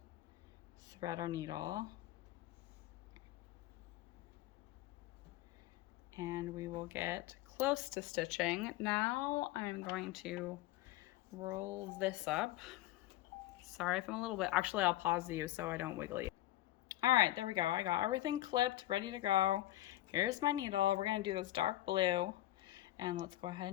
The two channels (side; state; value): right; quieter; 15.3 dB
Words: thread our needle and we will get close to stitching. Now I'm going to roll this up. Sorry if I'm a little bit, actually I'll pause you so I don't wiggle you. All right, there we go. I got everything clipped, ready to go. Here's my needle. We're gonna do this dark blue. And let's go ahead